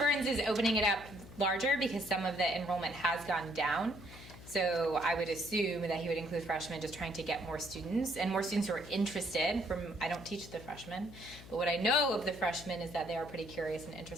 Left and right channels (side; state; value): left; noise; hum, 16 dB below the sound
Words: is opening it up larger because some of the enrollment has gone down. So I would assume that he would include freshmen, just trying to get more students and more students who are interested. I don't teach the freshmen, but what I know of the freshmen is that they are pretty curious and